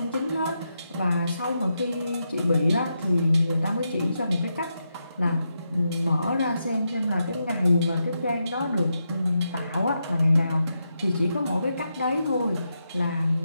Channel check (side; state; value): both; inverted; correlation -0.85